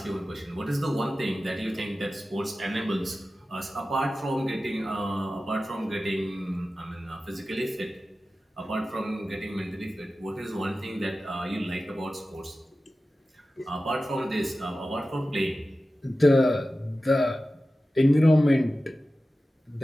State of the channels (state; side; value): normal; both; correlation 0.94